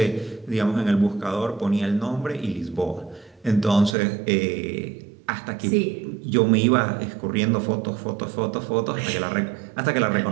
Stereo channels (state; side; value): drops out; left; at 4.0 s